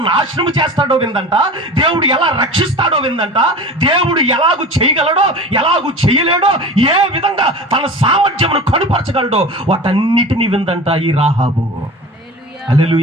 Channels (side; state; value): both; normal; correlation 0.35